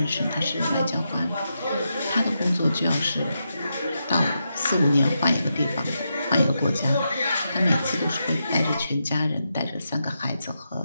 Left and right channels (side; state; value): both; inverted; correlation -0.86